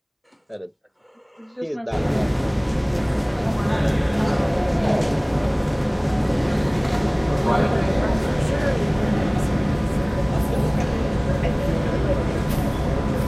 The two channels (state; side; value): identical; both; correlation 1.00